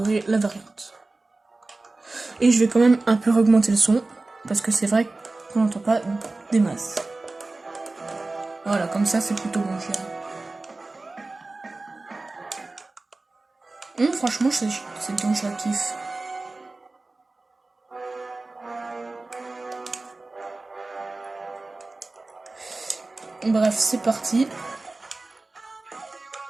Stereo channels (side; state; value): left; quieter; 3.2 dB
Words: la variante. Et je vais quand même un peu augmenter le son, parce que c'est vrai qu'on n'entend pas des masses. Voilà, comme ça c'est plutôt bon, je dirais. Franchement, c'est bien, je la kiffe. Bref, c'est parti.